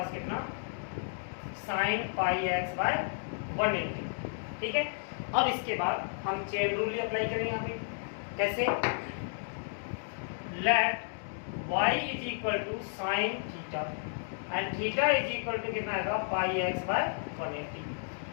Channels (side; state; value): right; silent; digital silence